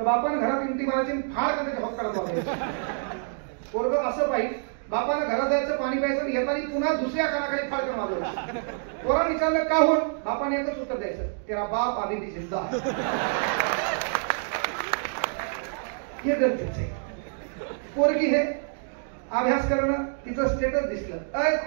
बापानं घरात इंटी मारायची, फार कधी जबाब करायचा. पोरग असं पाहिजे, बापानं घरात जायचं, पाणी प्यायचं, येताना पुन्हा दुसऱ्या कानाखाली फार करून मारलं. पोरानं विचारलं का होऊन, बापाने एकच उत्तर द्यायचं, तेरा बाप आधी ती जिंदा. हे गरजेचं आहे. पोरगी हे अभ्यास करणं, तिचं स्टेटस दिसलं, अय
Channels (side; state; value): left; silent; digital silence